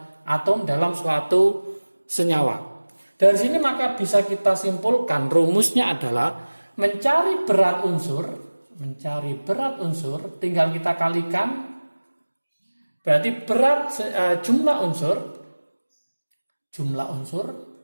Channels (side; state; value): both; inverted; correlation -1.00